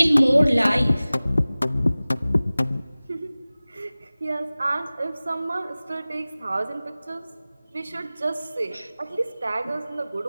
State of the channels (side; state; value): both; inverted; correlation -0.98